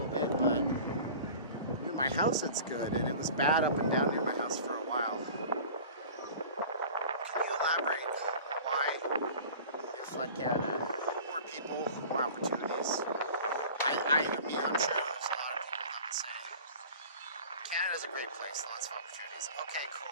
bit, but near my house it's good, and it was bad up and down near my house for a while. Can you elaborate why you flood Canada? More people, more opportunities. I mean, honestly, there's a lot of people that would say Canada's a great place, lots of opportunities. Okay,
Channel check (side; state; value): both; inverted; correlation -0.40